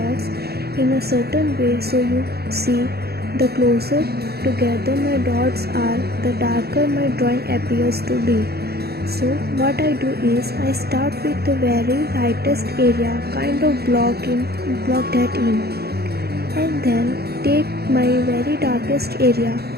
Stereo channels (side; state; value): left; late; 0.46 ms